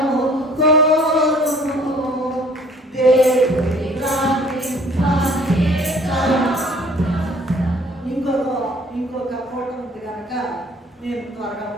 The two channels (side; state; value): both; normal; correlation 0.55